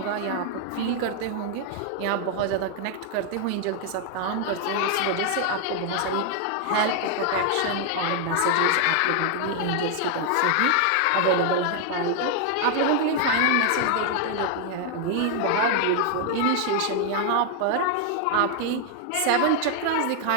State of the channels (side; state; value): both; different; correlation 0.00